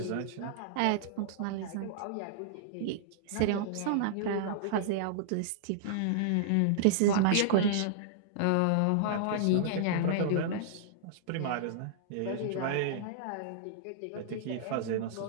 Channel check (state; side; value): different; both; correlation -0.02